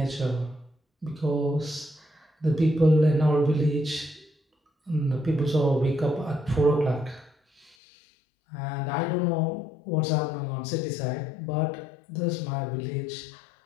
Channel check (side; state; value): right; drops out; at 7.8 s